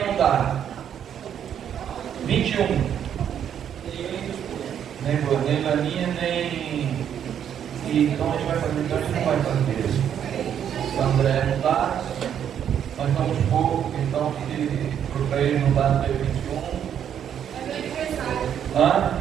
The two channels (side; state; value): left; quieter; 9.1 dB